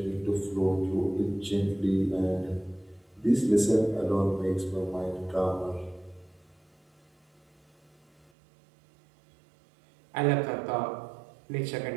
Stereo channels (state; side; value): drops out; left; at 8.3 s